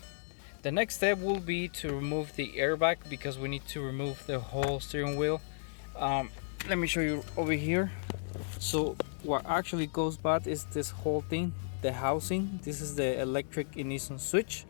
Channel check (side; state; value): right; silent; digital silence